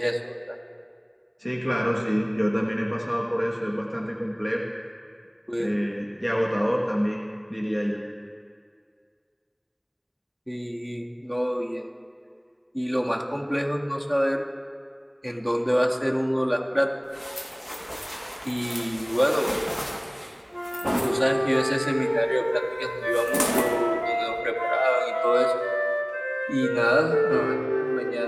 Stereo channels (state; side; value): identical; both; correlation 1.00